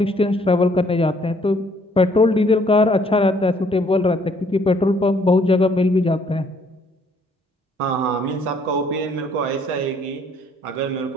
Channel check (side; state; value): both; normal; correlation 0.64